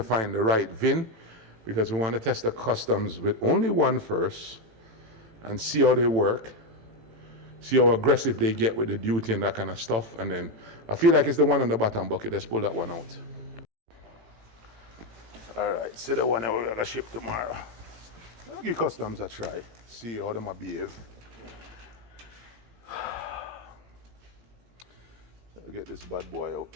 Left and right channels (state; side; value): late; left; 18 ms